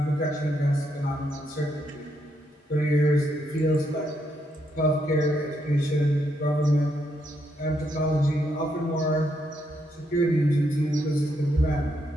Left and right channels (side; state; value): both; normal; correlation 0.78